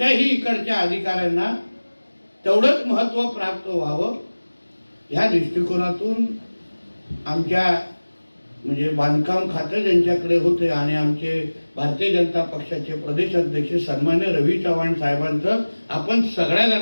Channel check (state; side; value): inverted; both; correlation -1.00